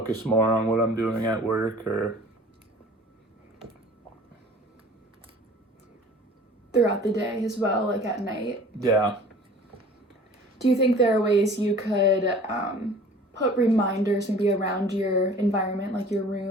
more on what I'm doing at work or Throughout the day as well, like at night. yeah. Do you think there are ways you could put reminders maybe around your environment, like your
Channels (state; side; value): normal; both; correlation 0.46